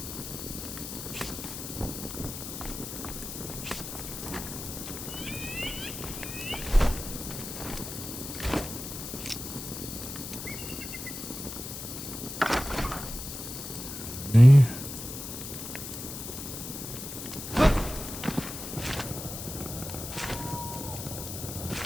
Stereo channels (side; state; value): left; noise; hiss, 8 dB below the sound